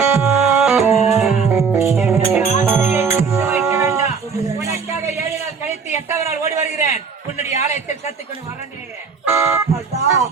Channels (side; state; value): left; quieter; 5.6 dB